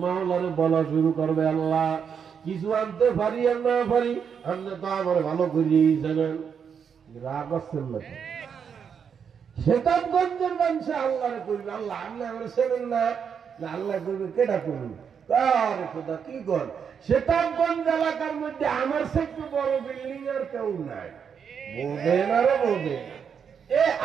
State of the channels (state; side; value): quieter; left; 7.1 dB